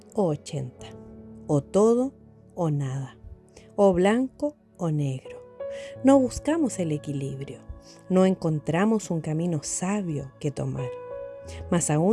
o 80, o todo o nada, o blanco o negro. No buscamos el equilibrio, no encontramos un camino sabio que tomar. Más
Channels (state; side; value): identical; both; correlation 1.00